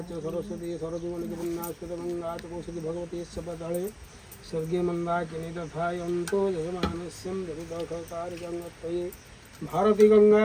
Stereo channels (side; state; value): both; identical; correlation 1.00